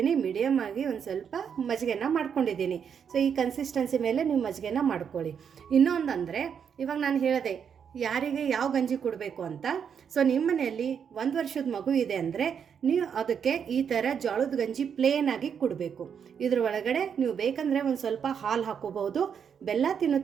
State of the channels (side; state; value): left; quieter; 7.4 dB